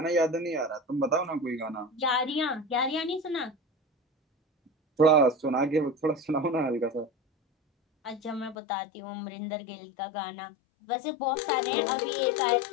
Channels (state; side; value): drops out; right; at 8.6 s